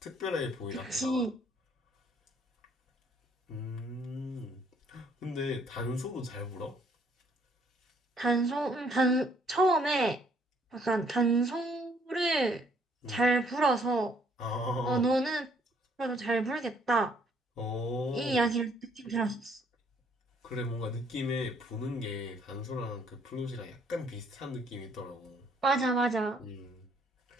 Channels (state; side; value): normal; both; correlation 0.65